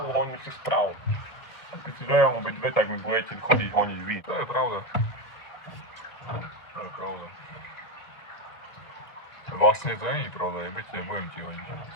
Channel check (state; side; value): late; right; 2.1 ms